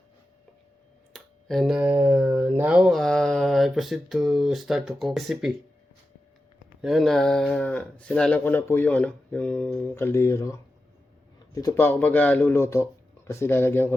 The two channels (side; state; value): both; normal; correlation 0.91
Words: And now I proceed to start to cook recipe. Yan, sinalang ko na po yung kaldero. Dito pa ako magluluto kasi lalagyan